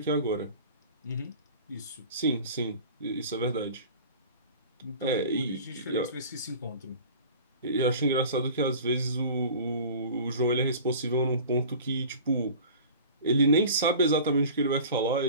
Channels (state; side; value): inverted; both; correlation -0.41